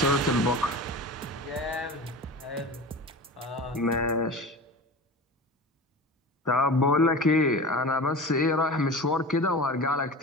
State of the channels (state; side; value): normal; both; correlation 0.33